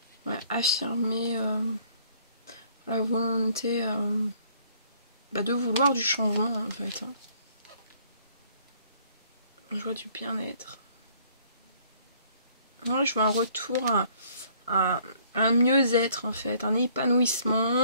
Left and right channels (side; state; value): both; inverted; correlation -0.60